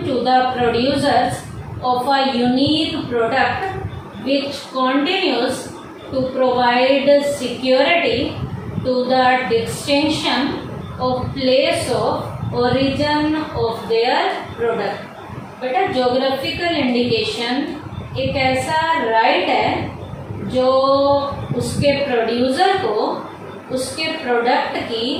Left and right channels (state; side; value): identical; both; correlation 1.00